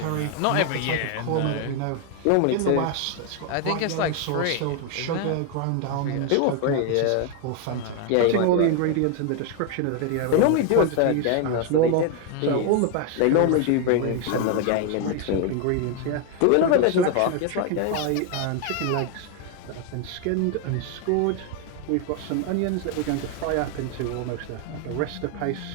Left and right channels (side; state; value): both; different; correlation 0.01